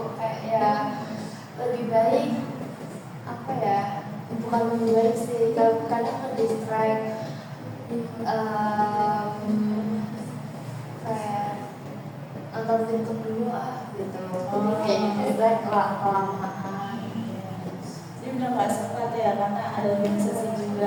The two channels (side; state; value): both; identical; correlation 1.00